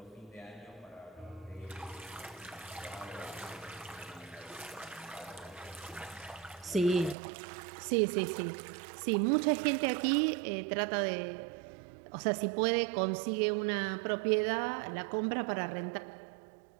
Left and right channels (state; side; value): drops out; left; at 7.2 s